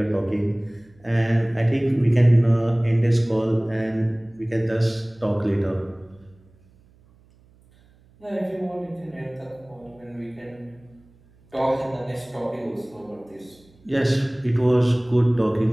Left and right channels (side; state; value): right; noise; hum, 30 dB below the sound